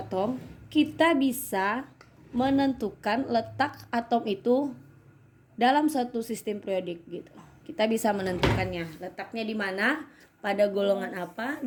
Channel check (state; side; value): identical; both; correlation 1.00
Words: kita bisa menentukan letak atom itu dalam suatu sistem periodik gitu. Kita bisa menentukannya, letaknya di mana, pada golongan apa,